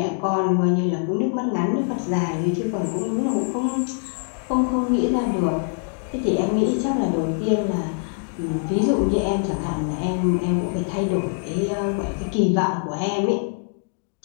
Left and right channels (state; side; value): silent; right; 63 dB below the other